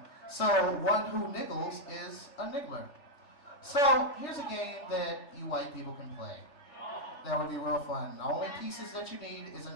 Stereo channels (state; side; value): late; right; 3.3 ms